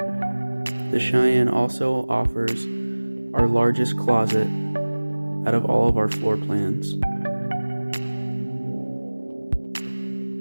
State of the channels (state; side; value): inverted; both; correlation -1.00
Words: The Cheyenne also offers our largest closet out of all of our floor plans.